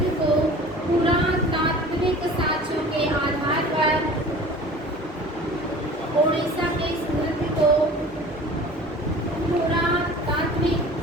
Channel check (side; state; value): both; normal; correlation 0.42